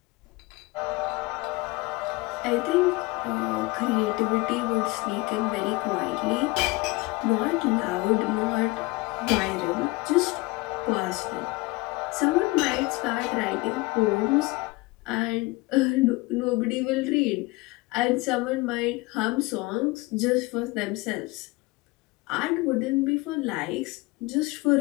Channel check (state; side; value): quieter; right; 23.0 dB